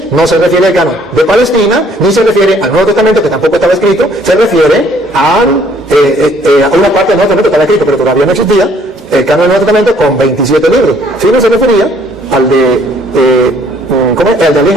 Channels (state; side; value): normal; both; correlation 0.62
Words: no se refiere al canon de Palestina, ni se refiere al Nuevo Testamento, que tampoco estaba escrito, se refiere a una parte del Nuevo Testamento que estaba escrito, pero todavía no existía, el canon del Nuevo Testamento con 27 libros. Si no se refería al de